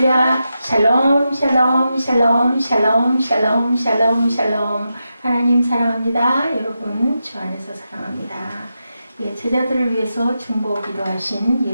샬롬 샬롬 샬롬 샬롬 샬롬 샬롬 샬롬. 하나님 사랑합니다. 여러분 주 안에서 사랑합니다. 예, 제자들을 위해서 중보 기도하신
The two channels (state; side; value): inverted; both; correlation -0.88